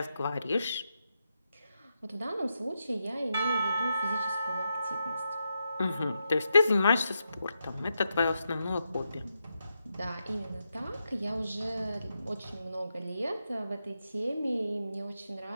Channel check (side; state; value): both; inverted; correlation -0.85